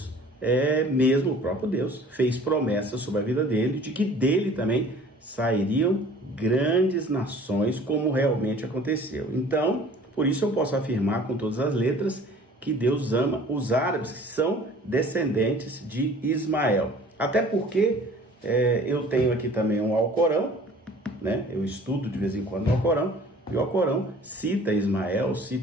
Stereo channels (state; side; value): normal; both; correlation 0.49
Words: mesmo o próprio Deus, fez promessas sobre a vida dele, de que dele também sairiam grandes nações, como realmente aconteceu. Então, por isso eu posso afirmar com todas as letras que Deus ama os árabes, que são descendentes de Ismael. Até porque eu tenho aqui também um Alcorão, eu estudo de vez em quando no Alcorão, e o Alcorão cita Ismael,